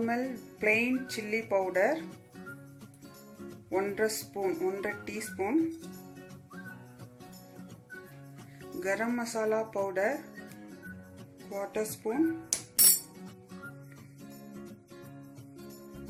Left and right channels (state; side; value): identical; both; correlation 1.00